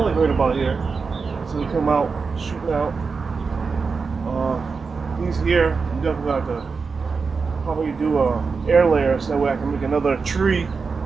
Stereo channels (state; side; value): quieter; left; 4.9 dB